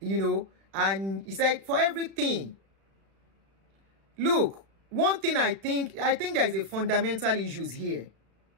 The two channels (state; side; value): late; left; 36 ms